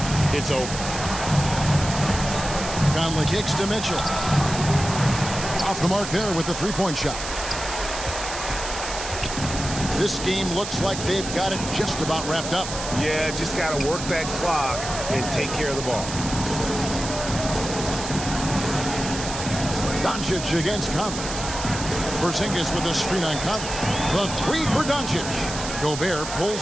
it's over. Conley kicks to Mitchell. Off the mark there with the three-point shot. This game looks like they've got it just about wrapped up. Yeah, just got to work that clock and take care of the ball. Doncic against Conley. Porzingis with a screen on Conley. The three for Doncic. Gobert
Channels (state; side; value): noise; right; hiss, 7 dB below the sound